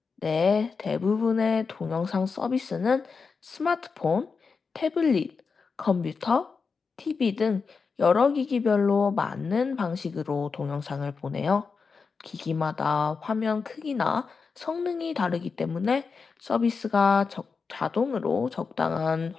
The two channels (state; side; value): quieter; right; 5.0 dB